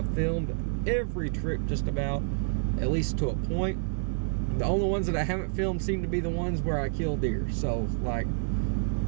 filmed every trip just about, at least to a point. The only ones that I haven't filmed seem to be the ones where I kill deer. So, like,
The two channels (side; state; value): left; silent; digital silence